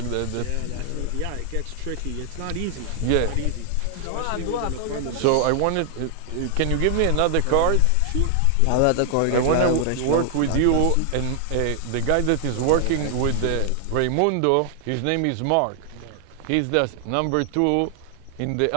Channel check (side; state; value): both; different; correlation 0.00